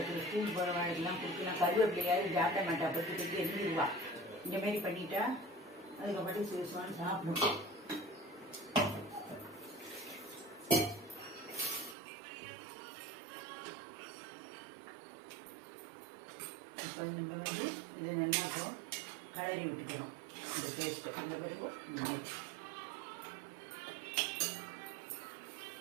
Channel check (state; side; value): drops out; left; at 12.0 s